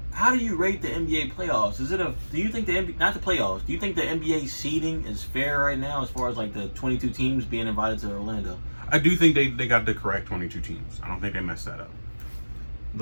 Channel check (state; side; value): inverted; both; correlation -1.00